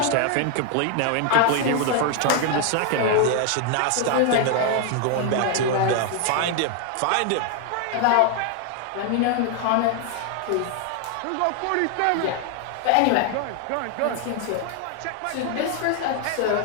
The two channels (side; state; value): both; different; correlation 0.00